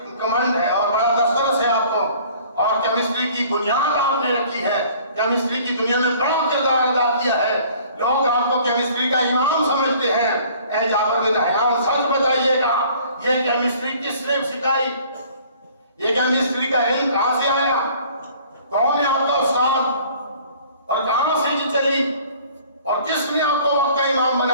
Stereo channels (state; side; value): inverted; both; correlation -0.53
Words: کمانڈ ہے اور بڑا دسترس ہے آپ کو, اور کیمسٹری کی بنیاد آپ نے رکھی ہے, کیمسٹری کی دنیا میں بڑا کردار ادا کیا ہے, لوگ آپ کو کیمسٹری کا امام سمجھتے ہیں. اے جابر بن حیان سچ بتائیے گا یہ کیمسٹری کس نے سکھائی, یہ کیمسٹری کا علم کہاں سے آیا, کون ہے آپ کا استاد, اور کہاں سے یہ چلی, اور کس نے آپ کو وقت کا امام